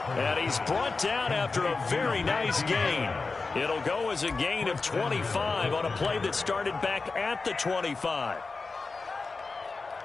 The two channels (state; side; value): quieter; right; 4.1 dB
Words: he's brought down after a very nice gain. It'll go as a gain of 25 on a play that started back at the 25.